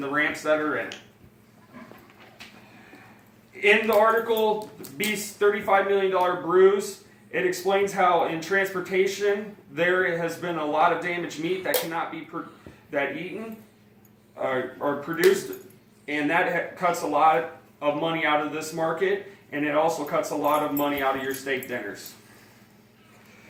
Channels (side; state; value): both; identical; correlation 1.00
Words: the ramps that are in it. In the article, Beef's $35 million bruise, it explains how in transportation there has been a lot of damaged meat that cannot be eaten or produced, and that cuts a lot of money out of this market, and it also cuts a lot of money out of your steak dinners.